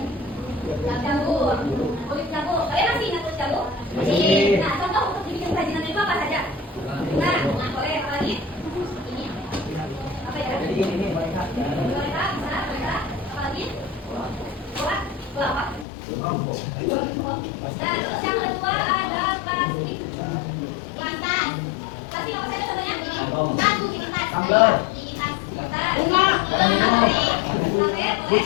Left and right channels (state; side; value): drops out; right; at 15.9 s